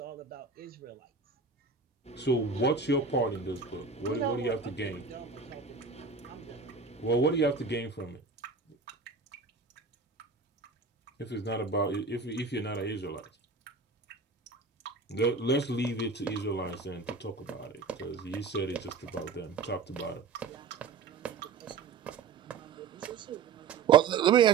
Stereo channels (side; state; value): left; quieter; 4.9 dB